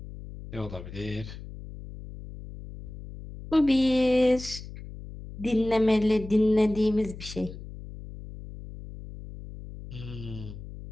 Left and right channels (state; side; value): noise; left; hum, 13 dB below the sound